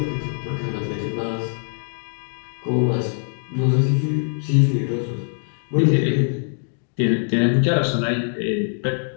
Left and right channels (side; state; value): right; silent; 64 dB below the other